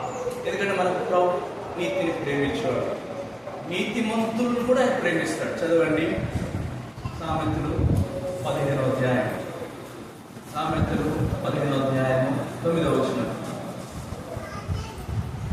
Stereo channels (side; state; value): both; identical; correlation 1.00